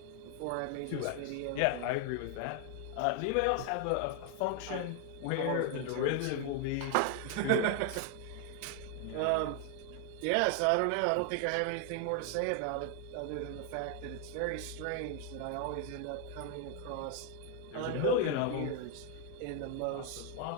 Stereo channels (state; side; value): different; both; correlation 0.00